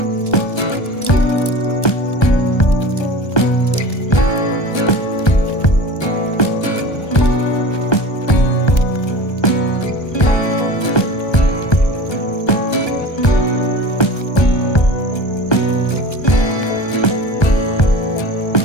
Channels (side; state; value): right; late; 1.3 ms